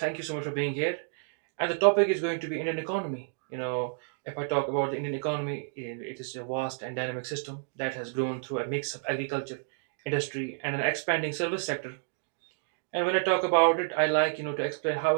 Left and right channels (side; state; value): left; silent; digital silence